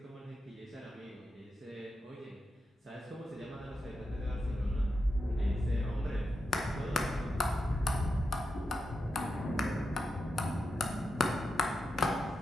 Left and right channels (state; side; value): normal; both; correlation 0.88